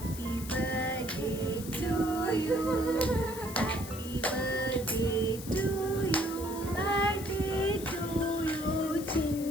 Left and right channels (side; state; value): left; noise; hiss, 12 dB below the sound